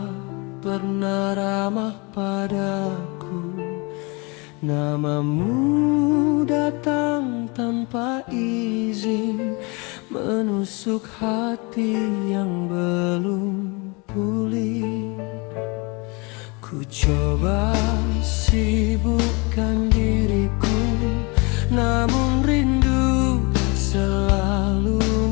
pernah ramah padaku. Namamu datang tanpa izin, menusuk hati yang belum pulih. Ku coba sibukkan diriku, namun rindu selalu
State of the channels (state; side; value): quieter; right; 28.8 dB